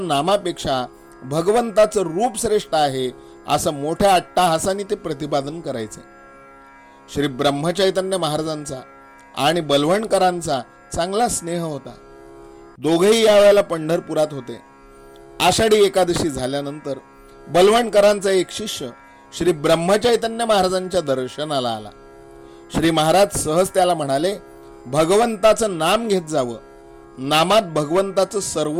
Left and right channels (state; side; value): identical; both; correlation 1.00